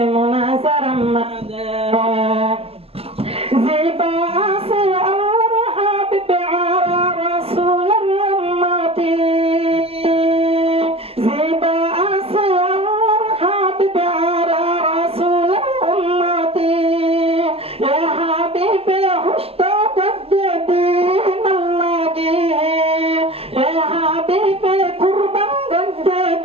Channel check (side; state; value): left; late; 0.29 ms